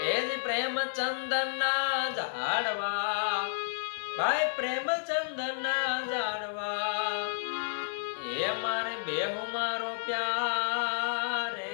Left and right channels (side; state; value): right; silent; digital silence